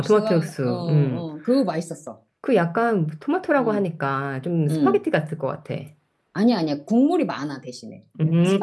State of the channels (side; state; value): both; identical; correlation 1.00